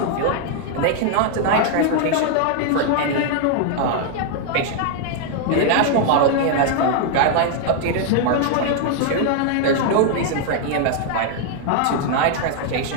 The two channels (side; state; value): both; different; correlation 0.00